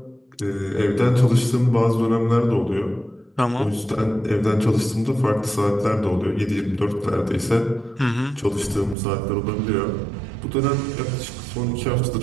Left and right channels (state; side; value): drops out; left; at 9.0 s